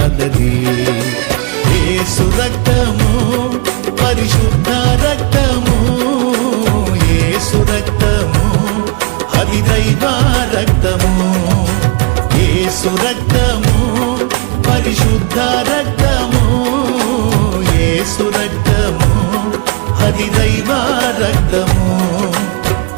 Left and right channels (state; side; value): quieter; left; 30.5 dB